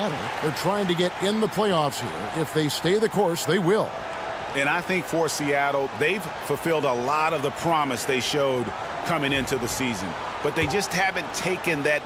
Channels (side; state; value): both; identical; correlation 1.00